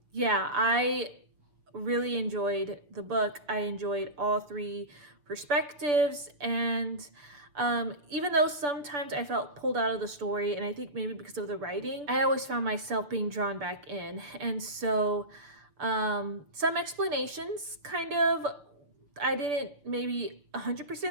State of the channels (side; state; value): left; late; 6.9 ms